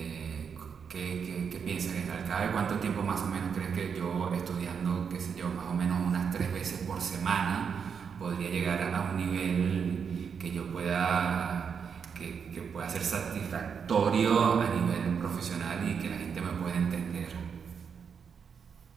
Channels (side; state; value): left; quieter; 6.6 dB